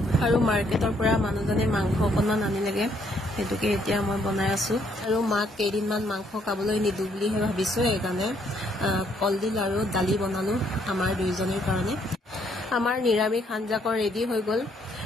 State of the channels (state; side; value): normal; both; correlation 0.69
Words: আৰু মাৰ্কেটৰ পৰা মানুহজনে মাংস অকণমান আনিলেগৈ, সেইটোকে এতিয়া মই বনাই আছোঁ। আৰু মাক কেইদিনমান মাংস খাবলৈ নিদিওঁ বুলিহে ভাবিছোঁ, সেইকাৰণে কলডিল আৰু দালি বনালোঁ আমাৰ দুয়োজনীৰ কাৰণে। আমাৰ নিৰামিষ আঞ্জাকণ ৰেডি হৈ গ'ল।